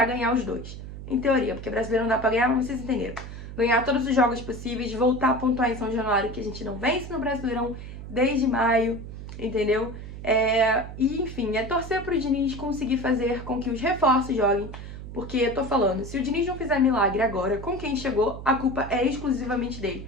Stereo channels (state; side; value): noise; right; hum, 11 dB below the sound